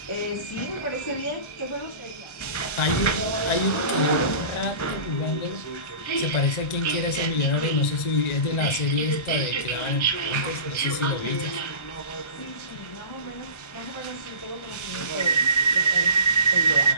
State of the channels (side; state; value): right; late; 1.3 ms